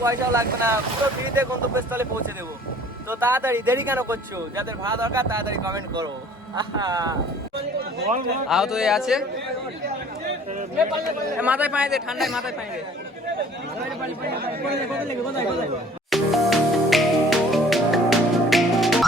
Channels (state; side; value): normal; both; correlation 0.52